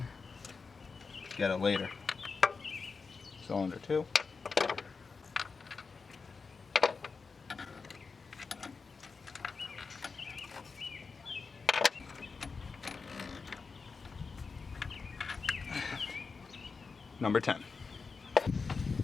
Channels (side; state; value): right; quieter; 4.8 dB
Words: Get it later. Cylinder 2. Number 10.